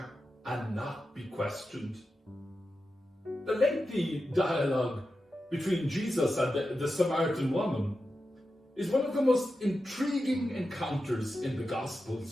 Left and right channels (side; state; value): both; normal; correlation 0.90